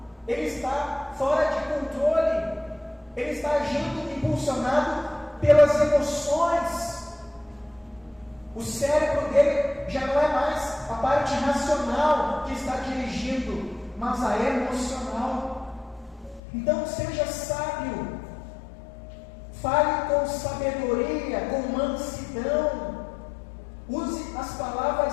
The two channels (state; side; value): drops out; right; at 16.4 s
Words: ele está fora de controle, ele está agindo impulsionado pelas emoções. O cérebro dele já não é mais a parte racional que está dirigindo, mas a emocional. Então seja sábio, fale com sabedoria, com mansidão, use as